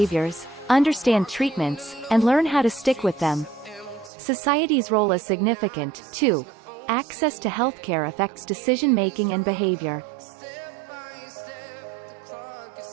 understand treatments, and learn how to stick with them. Society's role is significant, too. Access to healthcare affects decision-making and behavior.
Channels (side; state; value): left; drops out; at 4.1 s